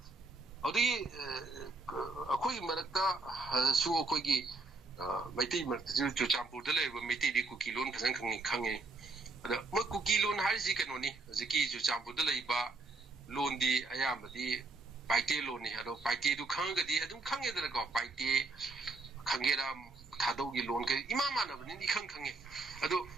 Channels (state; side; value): quieter; left; 3.5 dB